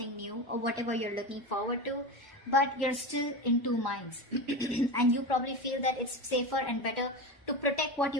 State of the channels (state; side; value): normal; both; correlation 0.22